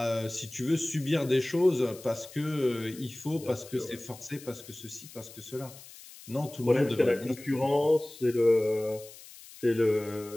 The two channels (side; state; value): left; noise; hiss, 18 dB below the sound